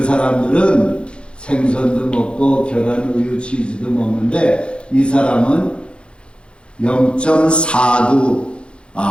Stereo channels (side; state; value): right; late; 0.056 ms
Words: 사람들은 생선도 먹고 계란, 우유, 치즈도 먹는데 이 사람은 0.49,